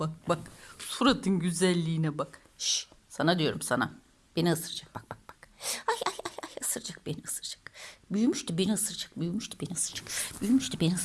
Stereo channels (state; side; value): identical; both; correlation 1.00